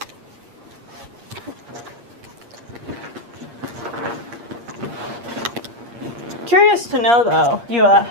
Curious to know though, you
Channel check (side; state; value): left; late; 8.5 ms